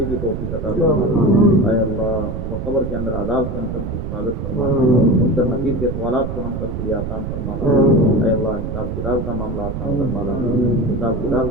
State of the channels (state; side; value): noise; right; rumble, 5 dB below the sound